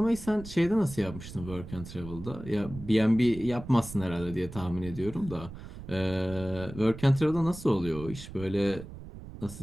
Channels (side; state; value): right; noise; rumble, 13 dB below the sound